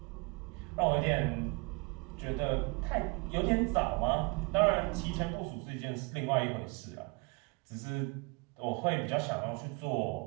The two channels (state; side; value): quieter; left; 30.1 dB